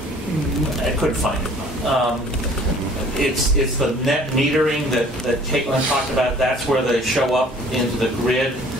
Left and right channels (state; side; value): normal; both; correlation 0.52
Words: I couldn't find it. It's the net metering that Caitlin talked about. That's where they show up into the grid.